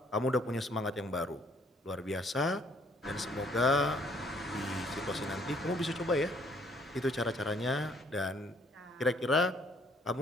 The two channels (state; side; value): normal; both; correlation 0.63